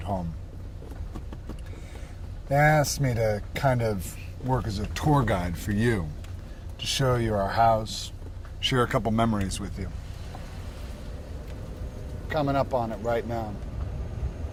home. They asked me to kind of work as a tour guide for you, to show you our house, share a couple memories with you. Coming up on it right now.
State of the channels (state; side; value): identical; both; correlation 1.00